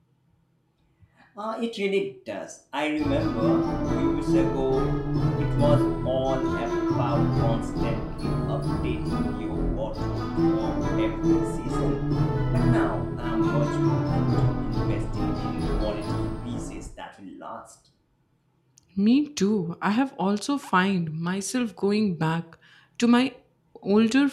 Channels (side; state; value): both; identical; correlation 1.00